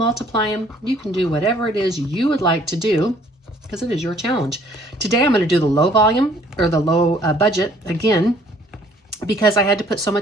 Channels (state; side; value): normal; both; correlation 0.59